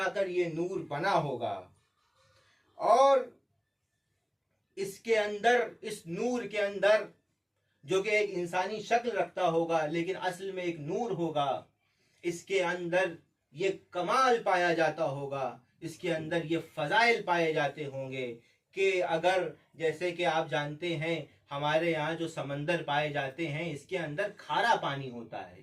کر یہ نور بنا ہوگا۔ اور اس کے اندر، اس نور کے اندر جو کہ ایک انسانی شکل رکھتا ہوگا لیکن اصل میں ایک نور ہوگا، اس کے اندر یہ کمال پایا جاتا ہوگا، اس کے اندر یہ فضائل پائے جاتے ہوں گے کہ اگر، جیسے کہ آپ جانتے ہیں ہمارے یہاں جو سمندر پائے جاتے ہیں اس کے اندر کھارا پانی ہوتا ہے،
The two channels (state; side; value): identical; both; correlation 1.00